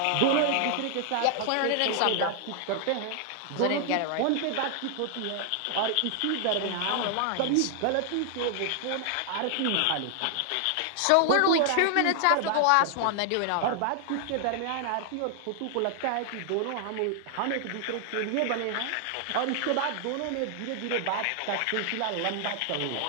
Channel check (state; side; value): different; both; correlation 0.00